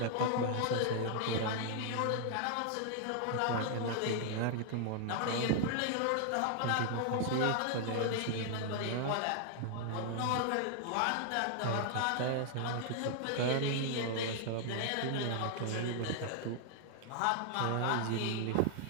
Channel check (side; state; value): both; different; correlation 0.00